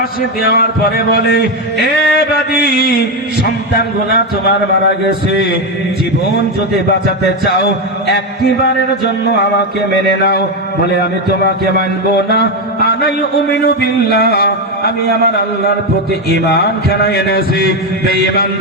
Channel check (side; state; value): both; normal; correlation 0.09